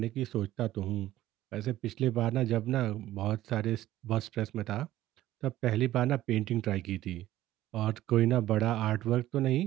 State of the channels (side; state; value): left; quieter; 14.6 dB